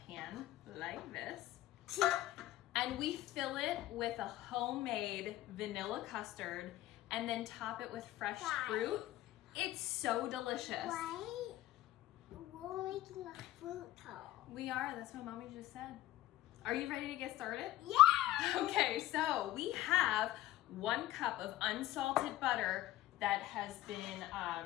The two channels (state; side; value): quieter; right; 15.0 dB